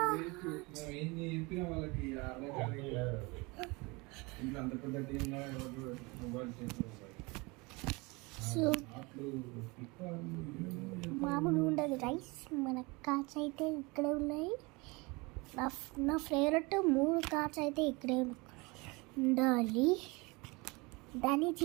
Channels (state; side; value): quieter; left; 26.1 dB